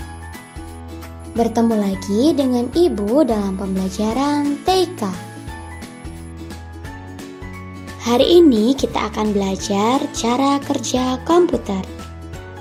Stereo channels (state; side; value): identical; both; correlation 1.00